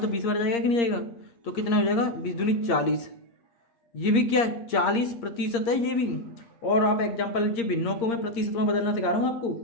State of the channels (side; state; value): right; late; 8.6 ms